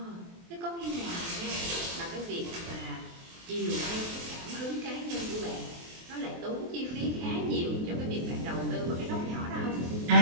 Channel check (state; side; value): late; left; 23 ms